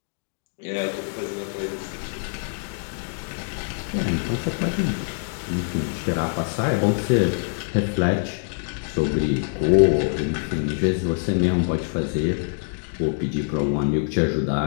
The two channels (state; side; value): silent; right; digital silence